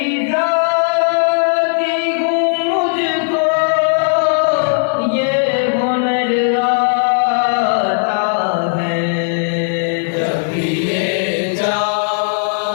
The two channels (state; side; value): silent; right; 66 dB below the other